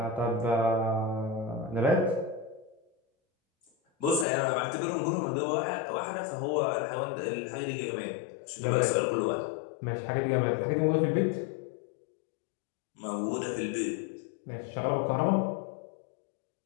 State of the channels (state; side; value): drops out; right; at 4.2 s